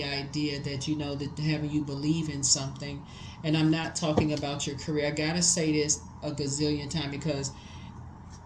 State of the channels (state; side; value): identical; both; correlation 1.00